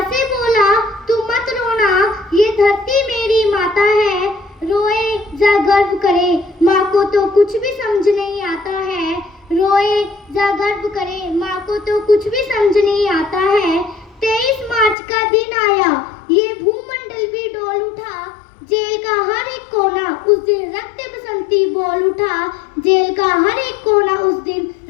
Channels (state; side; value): drops out; right; at 15.0 s